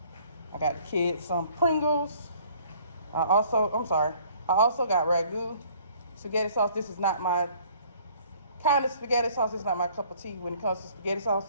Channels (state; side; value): inverted; both; correlation -0.57